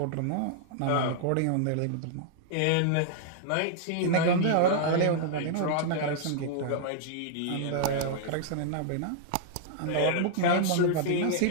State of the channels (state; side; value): different; both; correlation -0.01